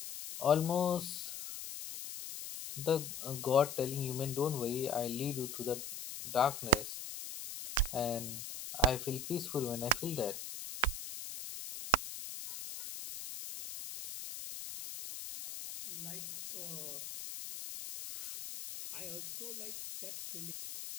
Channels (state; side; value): noise; left; hiss, 8 dB below the sound